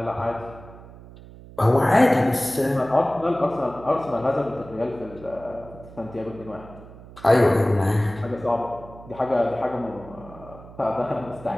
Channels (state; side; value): noise; right; hum, 18 dB below the sound